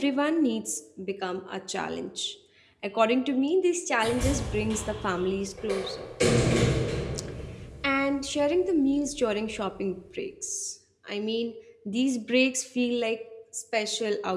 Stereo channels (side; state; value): both; identical; correlation 1.00